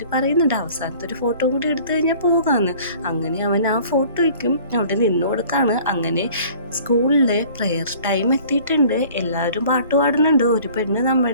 പറയുന്നുണ്ട് അവസാനത്തെ ഒരു ഫോട്ടോ കൂടി എടുത്തു കഴിഞ്ഞാൽ പോകാമെന്ന്. അങ്ങനെ അവൻ ആ ഫോട്ടോയ്ക്കും അവിടെ നിന്ന് കൊടുക്കാണ്. അങ്ങനെ സ്കൂളിലെ പ്രെയർ ടൈം എത്തിയിട്ടുണ്ട്. എല്ലാവരും പാട്ട് പാടുന്നുണ്ട്. ഒരു പെണ്ണ്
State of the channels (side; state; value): both; inverted; correlation -0.50